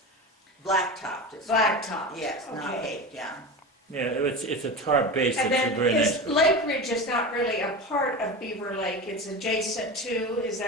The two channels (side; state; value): both; normal; correlation 0.27